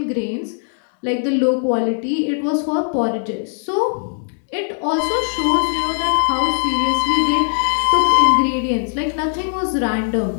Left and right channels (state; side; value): silent; right; digital silence